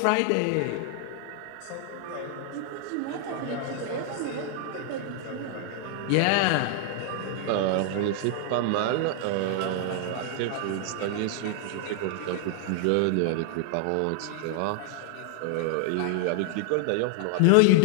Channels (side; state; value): both; different; correlation 0.00